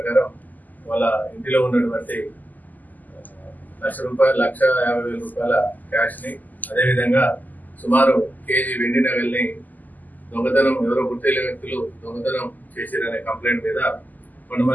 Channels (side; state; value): right; late; 0.083 ms